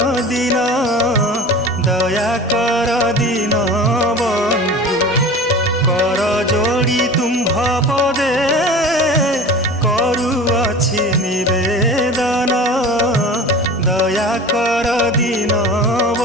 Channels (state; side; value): normal; both; correlation 0.37